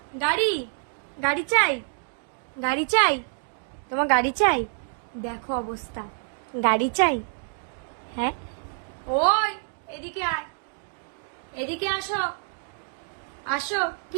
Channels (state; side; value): silent; left; digital silence